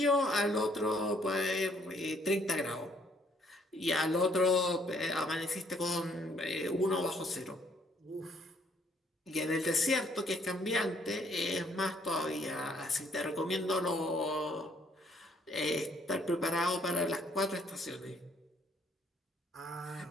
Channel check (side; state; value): both; normal; correlation 0.66